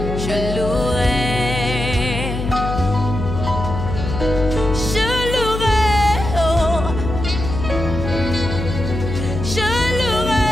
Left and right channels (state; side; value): noise; left; hum, 5 dB below the sound